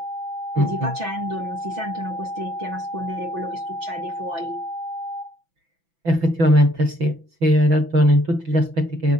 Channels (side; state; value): left; late; 6.0 ms